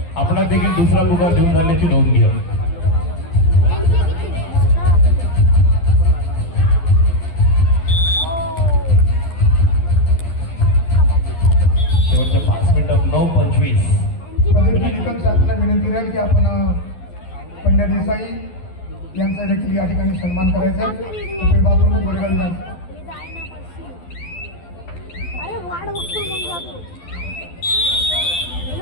आपला देखील दुसरा पुकार देऊन झाल्याची नोंद घ्या. शेवटच्या 5 मिनिटात 9:25. निकम साहेबांना विनंती राहील की आपण पंड्या देसाई यांचा देखील या ठिकाणी सन्मान करायचा. बाबू गोरेगाव विधानसभा. अरे वाढ बघतो मग जातो.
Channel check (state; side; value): late; right; 12 ms